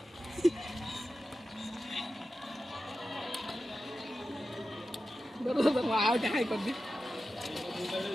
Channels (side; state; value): both; normal; correlation 0.92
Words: দাদা দাদা আউটা হাই করছে